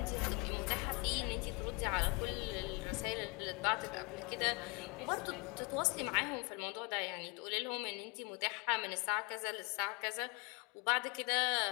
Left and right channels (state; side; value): quieter; right; 30.2 dB